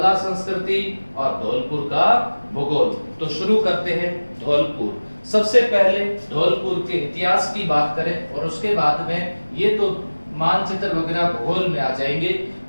संस्कृति और धौलपुर का भूगोल। तो शुरू करते हैं धौलपुर। सबसे पहले धौलपुर के इतिहास की बात करें और उसके बाद में ये तो मानचित्र वगैरह भूगोल में आ जाएंगे।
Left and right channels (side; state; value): both; inverted; correlation -1.00